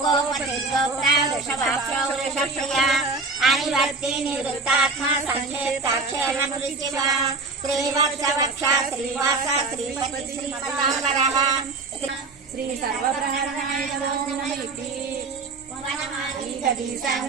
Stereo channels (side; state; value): left; quieter; 3.8 dB